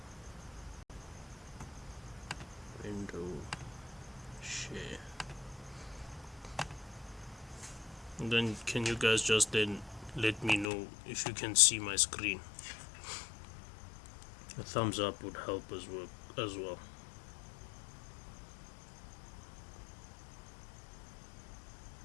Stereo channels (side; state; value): right; drops out; at 10.7 s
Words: Window. Share. And then can you guys just then let me know if you can see my screen? A thumbs up would help as well.